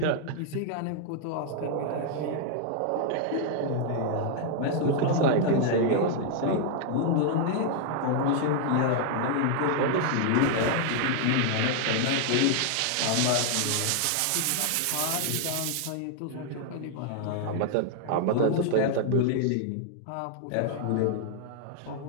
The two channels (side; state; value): both; different; correlation 0.00